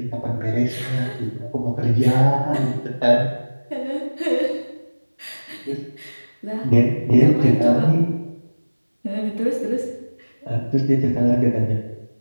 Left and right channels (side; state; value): both; inverted; correlation -1.00